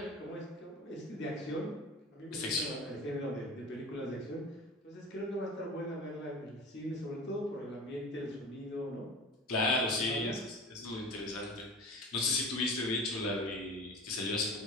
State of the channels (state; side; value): normal; both; correlation 0.36